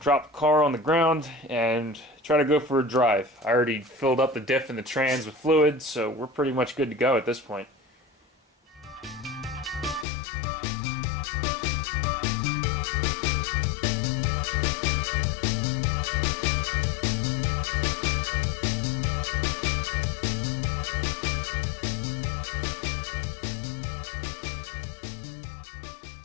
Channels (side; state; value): right; drops out; at 10.1 s